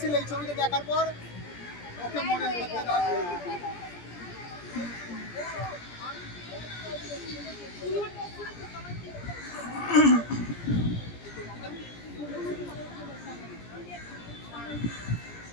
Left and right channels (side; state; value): right; late; 17 ms